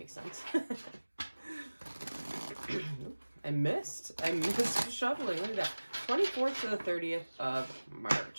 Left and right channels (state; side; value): inverted; both; correlation -1.00